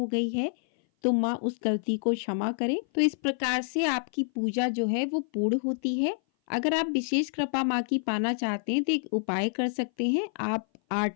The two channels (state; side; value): silent; right; 57 dB below the other